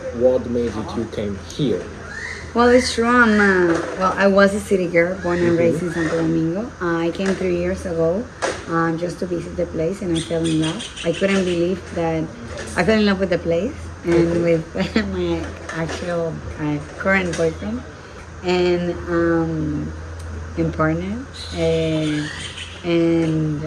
what made you came here? Well, it's true. I was a city girl, born and Mm-hmm. raised in Santo Domingo. I came 3 years ago just to visit the place, and I fell in love. I couldn't believe that I fell in love with the place and with my actual current boyfriend and partner. And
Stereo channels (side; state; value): both; identical; correlation 1.00